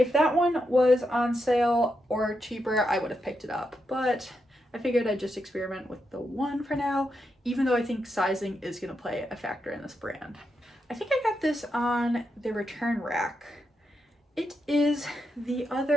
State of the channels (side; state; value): both; normal; correlation 0.84